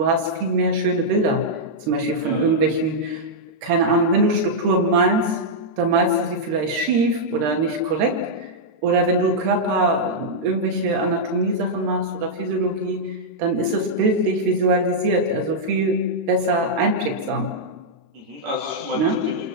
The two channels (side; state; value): left; late; 13 ms